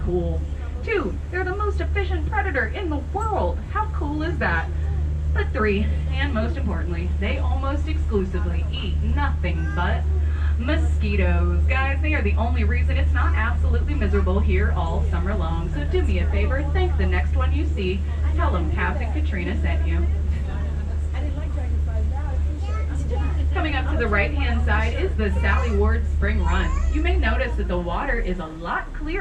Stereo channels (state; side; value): identical; both; correlation 1.00